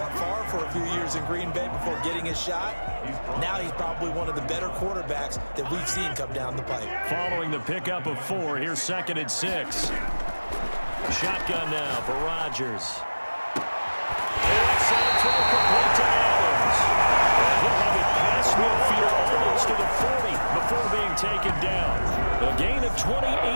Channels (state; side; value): inverted; both; correlation -1.00